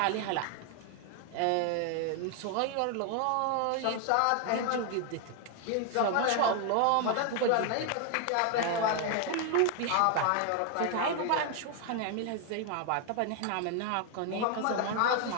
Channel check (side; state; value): both; different; correlation 0.00